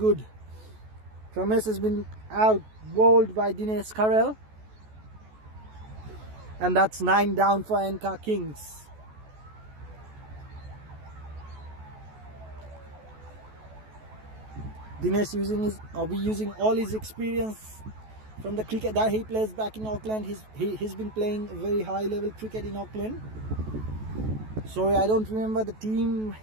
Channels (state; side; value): late; left; 14 ms